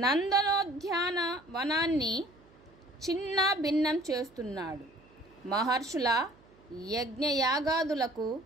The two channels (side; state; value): right; noise; hum, 28 dB below the sound